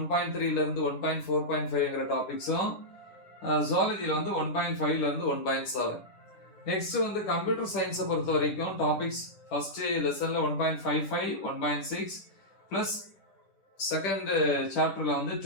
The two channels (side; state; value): right; late; 10 ms